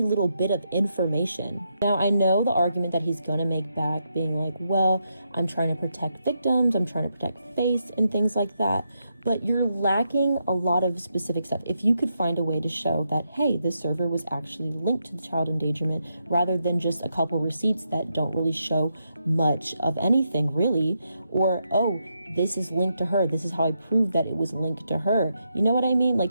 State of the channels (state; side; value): inverted; both; correlation -0.82